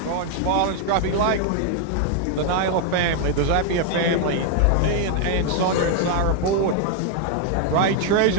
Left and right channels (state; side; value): different; both; correlation 0.00